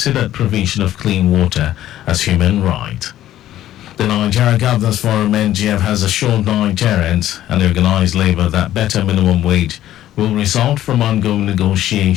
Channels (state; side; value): quieter; right; 13.1 dB